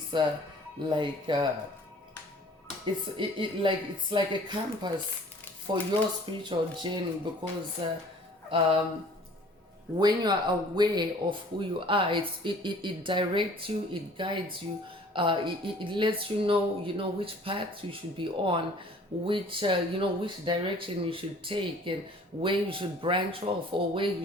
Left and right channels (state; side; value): normal; both; correlation 0.51